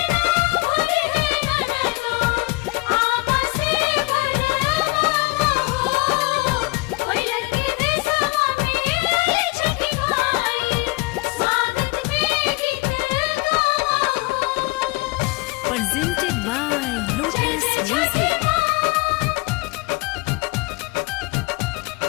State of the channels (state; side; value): quieter; right; 23.7 dB